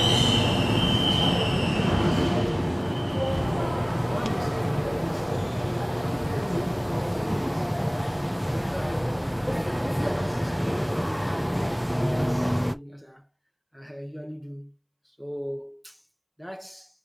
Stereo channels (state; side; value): identical; both; correlation 1.00